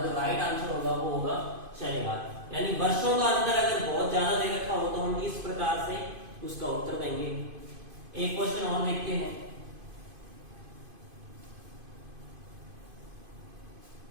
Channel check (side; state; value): left; late; 2.5 ms